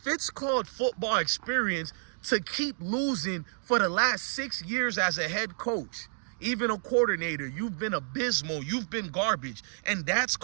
it's called football experience to keep losing for the last 6 years as a head coach, even a coordinator, you've been abysmal, you've been garbage, and that's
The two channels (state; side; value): silent; left; digital silence